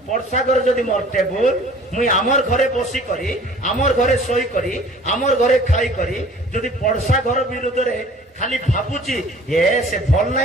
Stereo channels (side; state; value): both; normal; correlation 0.50